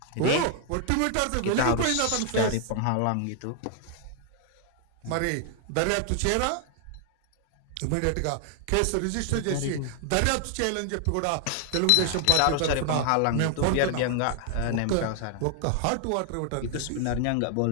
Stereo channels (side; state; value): both; different; correlation 0.00